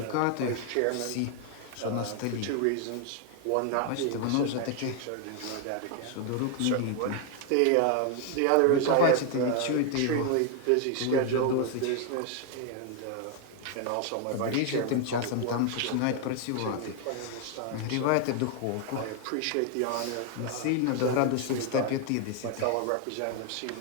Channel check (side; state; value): both; different; correlation 0.00